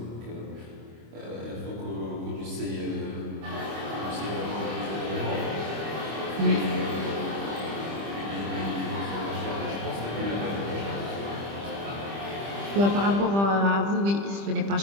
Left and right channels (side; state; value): left; late; 25 ms